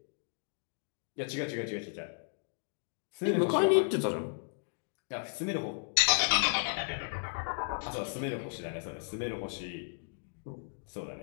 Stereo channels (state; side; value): silent; right; digital silence